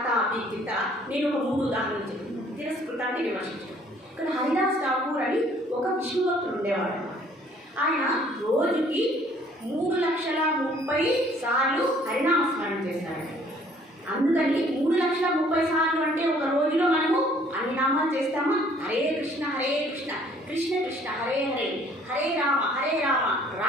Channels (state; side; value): normal; both; correlation 0.58